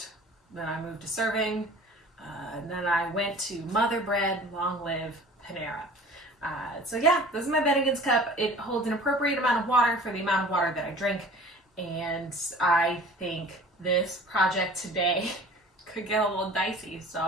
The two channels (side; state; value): both; normal; correlation 0.44